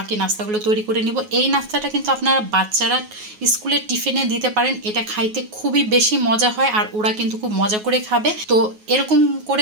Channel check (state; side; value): late; left; 9.4 ms